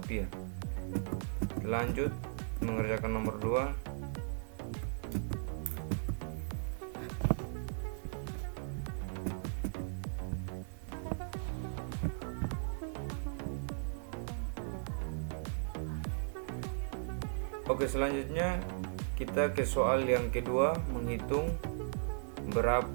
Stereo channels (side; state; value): left; silent; 53 dB below the other